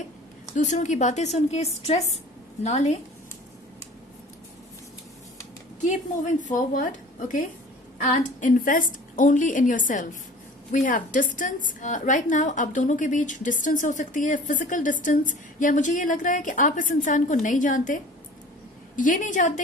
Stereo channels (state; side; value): normal; both; correlation 0.45